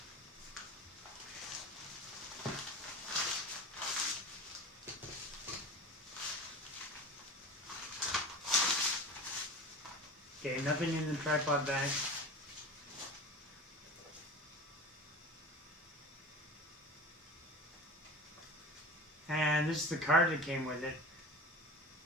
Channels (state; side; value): normal; both; correlation 0.34